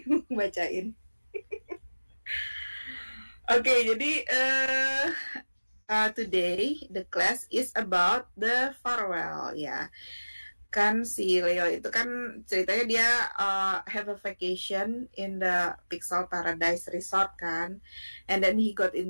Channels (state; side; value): inverted; both; correlation -1.00